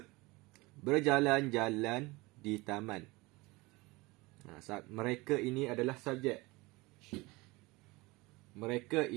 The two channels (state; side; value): quieter; left; 23.0 dB